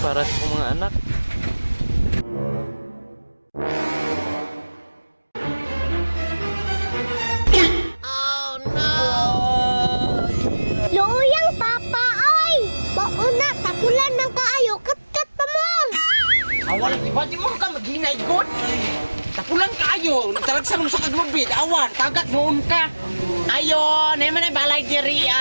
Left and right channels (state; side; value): inverted; both; correlation -1.00